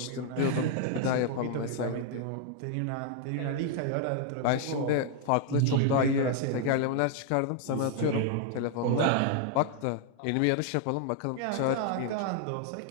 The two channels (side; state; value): both; different; correlation 0.00